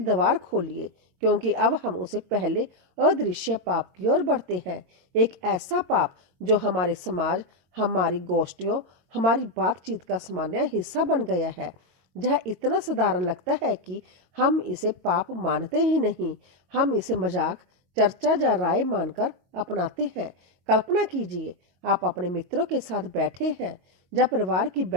खोलिए, क्योंकि अब हम उसे पहले अदृश्य पाप की ओर बढ़ते हैं। एक ऐसा पाप जो हमारे समाज, हमारी गोष्ठियों, हमारी बातचीत का सामान्य हिस्सा बन गया है। यह इतना साधारण लगता है कि हम इसे पाप मानते ही नहीं, हम इसे मजाक, चर्चा या राय मानकर अपनाते हैं। कल्पना कीजिए, आप अपने मित्रों के साथ बैठे हैं या परिवार की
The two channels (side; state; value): left; late; 22 ms